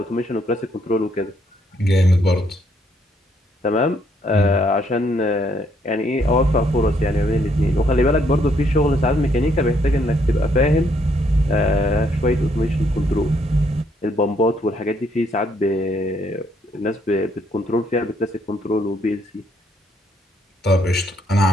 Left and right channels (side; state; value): both; normal; correlation 0.71